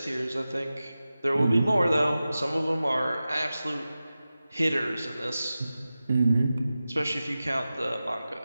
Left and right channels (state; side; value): inverted; both; correlation -0.94